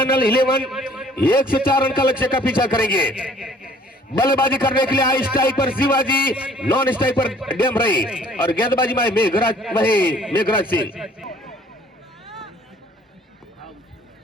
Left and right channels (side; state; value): both; normal; correlation 0.56